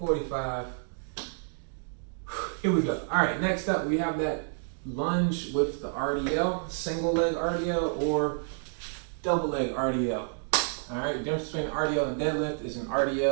Here we go. All right, next up we have that lunge with the RDL, single leg RDL or double leg RDL. All right, the difference between RDL and deadlift is an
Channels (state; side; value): silent; left; digital silence